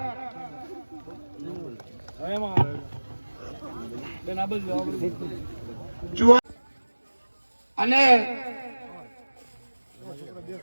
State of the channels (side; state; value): both; inverted; correlation -1.00